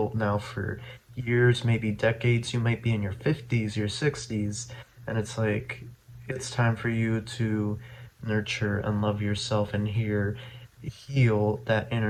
now for years, maybe decades. You might be in your 50s, your 60s, and it's like it's time for you to nurture and love yourself and heal that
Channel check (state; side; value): identical; both; correlation 1.00